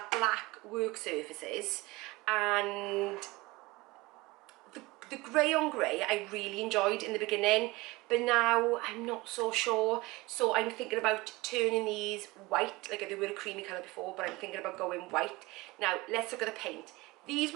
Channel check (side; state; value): left; quieter; 21.8 dB